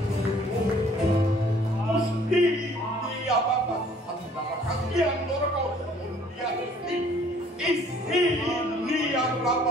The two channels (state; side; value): normal; both; correlation 0.58